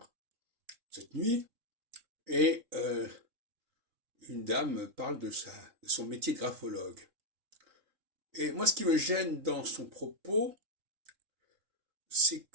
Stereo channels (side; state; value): left; late; 3.7 ms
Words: cette nuit, et une dame parle de son métier de graphologue. Et moi, ce qui me gêne dans son propos, c'est